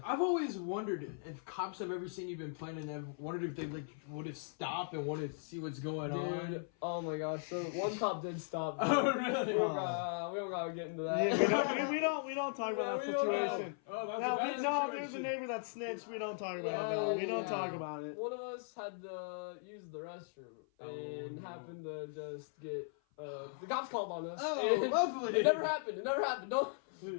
I've always wondered if cops have ever seen you been playing, and I've wondered if they would have stopped and wanted to see what's going on. Oh my gosh! So one cop did stop. Oh really? We don't gotta get into that. Yeah, we don't talk about that situation. There's a neighbor that snitched. We don't talk about it. We don't talk about it. One of us had to use the restroom and happened to just get the cops called on us. Oh, lovely! It never happened. Don't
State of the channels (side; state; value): right; silent; 52 dB below the other